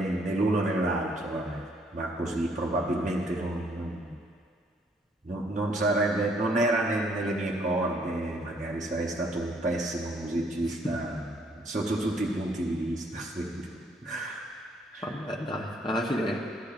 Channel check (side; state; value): both; normal; correlation 0.66